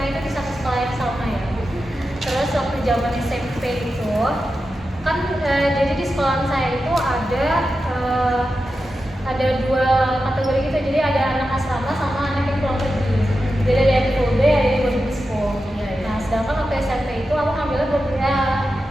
itu di satu sekolah yang sama ya. Terus waktu zaman SMP itu kan jadi di sekolah saya itu ada dua kategori gitu. Jadi ada anak asrama sama anak yang pulang pergi. Jadi ada yang full day, ada yang boarding school. Nah, sedangkan waktu SMP itu aku ngambilnya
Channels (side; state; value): both; normal; correlation 0.91